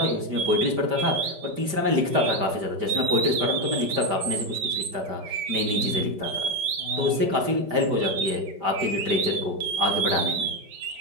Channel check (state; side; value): late; left; 5.0 ms